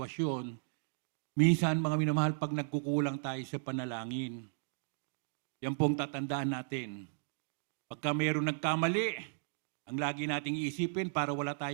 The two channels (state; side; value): silent; left; digital silence